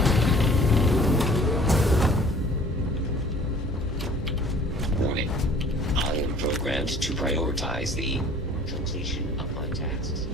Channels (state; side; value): normal; both; correlation 0.51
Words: Warning. I am programmed to prioritize the completion of my tasks.